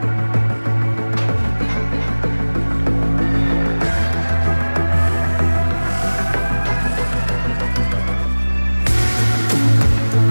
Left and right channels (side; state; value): both; inverted; correlation -1.00